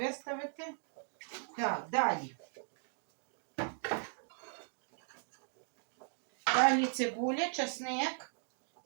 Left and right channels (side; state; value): left; silent; digital silence